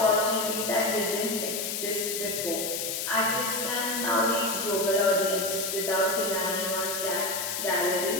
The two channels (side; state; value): left; noise; hiss, 3 dB below the sound